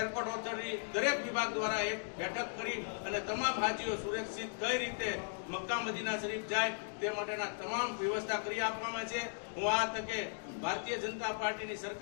ઓથોરિટી દરેક વિભાગ દ્વારા એક બેઠક કરી અને તમામ હાજીઓ સુરક્ષિત કઈ રીતે મક્કા મદીના શરીફ જાય તે માટેના તમામ વ્યવસ્થા કરી આપવામાં છે। હું આ તકે ભારતીય જનતા પાર્ટીની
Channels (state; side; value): silent; right; digital silence